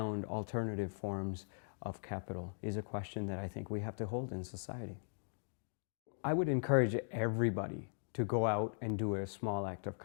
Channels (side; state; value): right; silent; digital silence